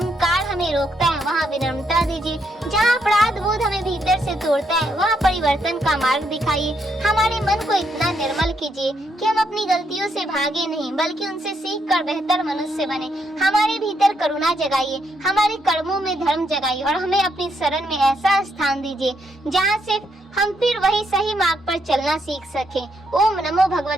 हमें रोकता है वहाँ विनम्रता दीजिए। जहाँ अपराध बोध हमें भीतर से तोड़ता है वहाँ परिवर्तन का मार्ग दिखाइए। हमारे मन को इतना निर्मल कीजिए कि हम अपनी गलतियों से भागे नहीं बल्कि उनसे सीख कर बेहतर मनुष्य बने। हमारे भीतर करुणा जगाइए, हमारे कर्मों में धर्म जगाइए और हमें अपनी शरण में ऐसा स्थान दीजिए जहाँ से हम फिर वही सही मार्ग पर चलना सीख सकें। ओम नमो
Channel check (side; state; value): both; normal; correlation 0.77